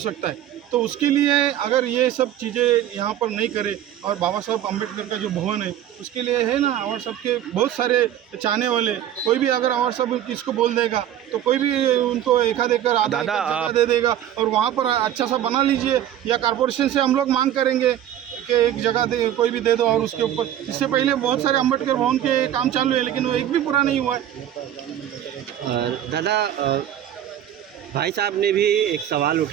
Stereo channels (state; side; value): quieter; left; 11.3 dB